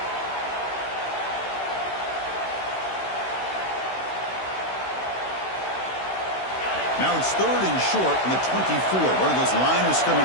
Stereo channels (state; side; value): late; right; 16 ms